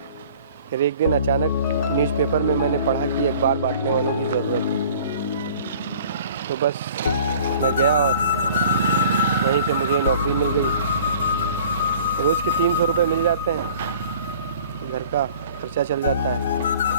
फिर एक दिन अचानक न्यूज़पेपर में मैंने पढ़ा कि अखबार बांटने वालों की ज़रूरत है, तो बस मैं गया और वहीं से मुझे नौकरी मिल गई। रोज़ के 300 रुपये मिल जाते हैं, घर का खर्चा चल जाता है,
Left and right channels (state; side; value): inverted; both; correlation -0.49